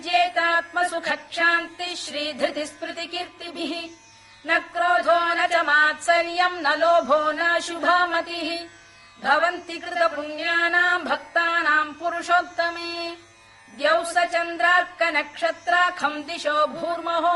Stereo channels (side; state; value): both; identical; correlation 1.00